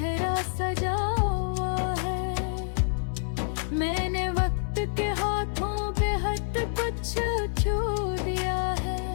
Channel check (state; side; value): silent; right; digital silence